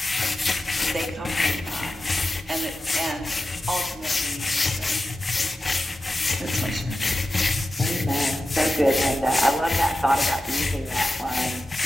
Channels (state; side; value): normal; both; correlation 0.93